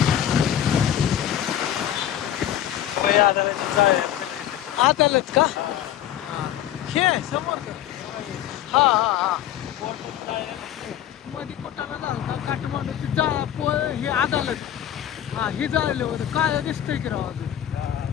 अदालत का? हे समोर का? हा हा हा मध्ये कोटाला झालं काठमांडूची हे अदालत. हा ही जाळले होते काय दिसतंय की राव अजून.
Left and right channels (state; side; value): quieter; right; 11.3 dB